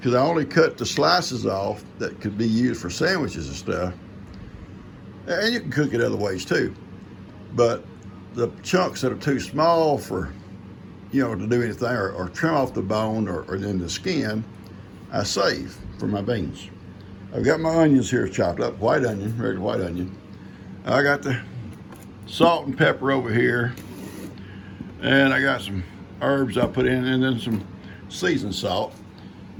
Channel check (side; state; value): both; identical; correlation 1.00